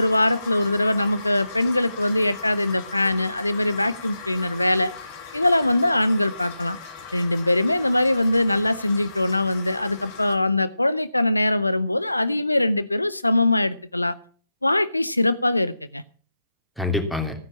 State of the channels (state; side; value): inverted; both; correlation -0.91